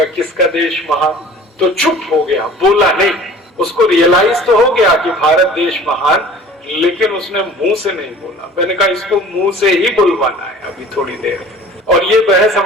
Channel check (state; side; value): normal; both; correlation 0.46